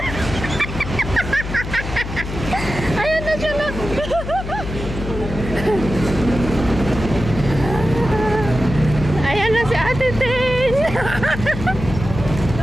Ayan na siya na. Ayan na si Ate Tin.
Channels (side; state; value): left; noise; hum, 7 dB below the sound